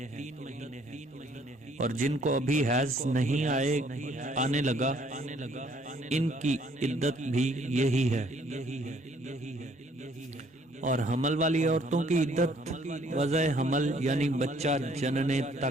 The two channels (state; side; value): normal; both; correlation 0.62